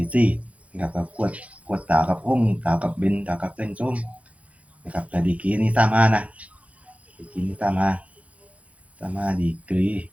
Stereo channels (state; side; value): late; left; 0.065 ms